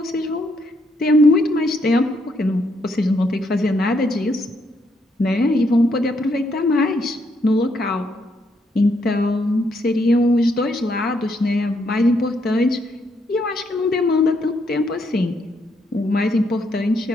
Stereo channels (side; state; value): both; normal; correlation 0.75